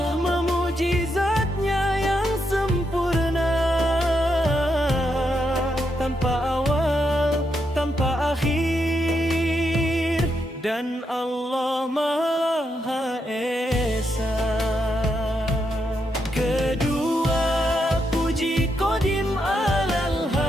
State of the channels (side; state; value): both; normal; correlation 0.81